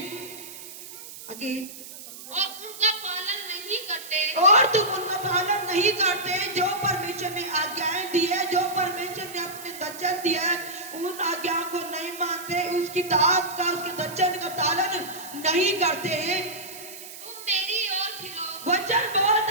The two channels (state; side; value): noise; right; hiss, 14 dB below the sound